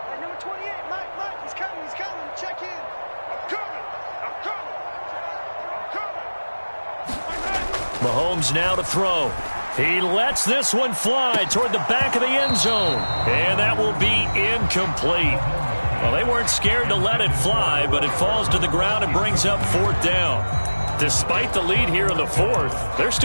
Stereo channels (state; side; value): inverted; both; correlation -1.00